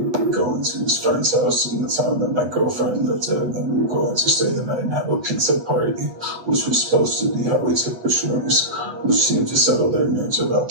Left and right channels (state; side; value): late; left; 8.6 ms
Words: were going to his friend's house in the town that my girlfriend lived in, and we were going to stay the night and have a pizza party, which was supposed to be how we took the shrooms, which seemed to settle their nerves about